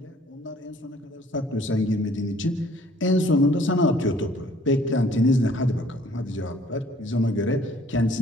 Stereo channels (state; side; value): normal; both; correlation 0.58